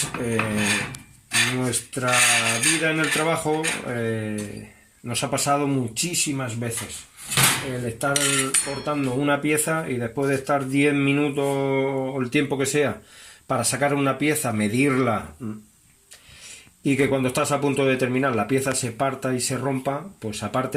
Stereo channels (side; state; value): both; identical; correlation 1.00